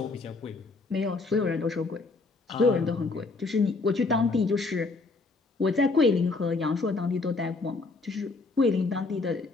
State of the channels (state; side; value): quieter; right; 3.7 dB